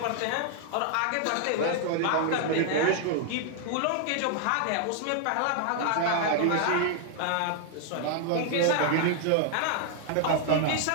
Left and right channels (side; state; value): both; different; correlation 0.00